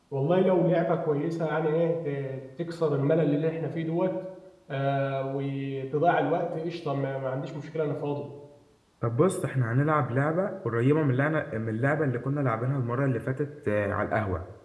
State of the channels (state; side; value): identical; both; correlation 1.00